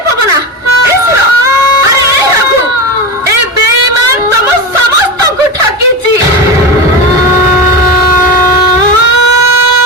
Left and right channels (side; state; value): both; normal; correlation 0.21